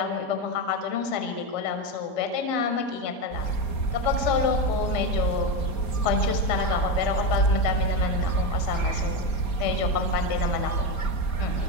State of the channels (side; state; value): right; late; 4.3 ms